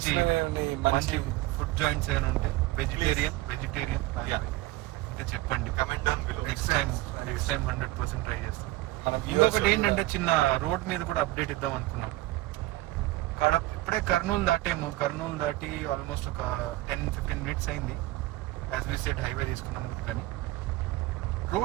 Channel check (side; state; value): left; quieter; 17.9 dB